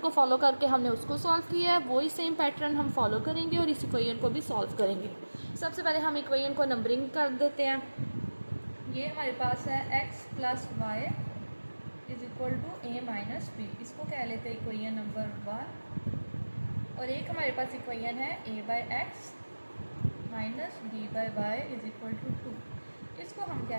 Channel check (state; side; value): inverted; both; correlation -1.00